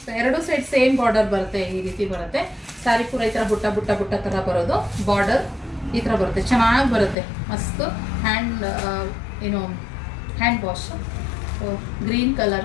ಸೊ ಎರಡು ಸೈಡ್ ಸೇಮ್ ಬಾರ್ಡರ್ ಬರುತ್ತೆ, ಈ ರೀತಿ ಬರುತ್ತೆ. ಸ್ಯಾರಿ ಪೂರ ಈ ಥರ ಬುಟ್ಟ ಬುಟ್ಟ ಬುಟ್ಟ ಥರ ಬರೋದು. ಬಾರ್ಡರ್ ಈ ಥರ ಬರುತ್ತೆ, ಚೆನ್ನಾಗಿ ಬರುತ್ತೆ. ಮಸ್ತ್ ಹ್ಯಾಂಡ್ ವಾಶ್. ಗ್ರೀನ್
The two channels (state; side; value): drops out; right; at 7.2 s